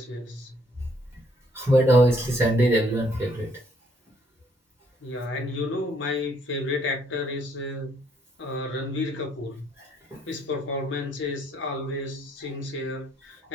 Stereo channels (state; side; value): normal; both; correlation 0.66